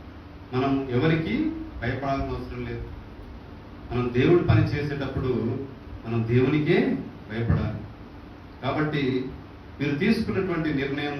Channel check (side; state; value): both; identical; correlation 1.00